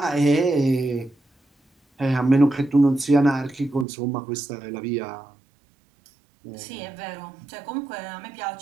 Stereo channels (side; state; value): left; drops out; at 3.9 s